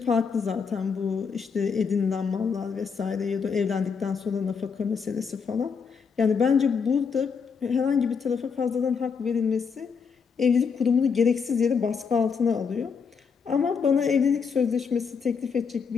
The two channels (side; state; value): right; quieter; 5.9 dB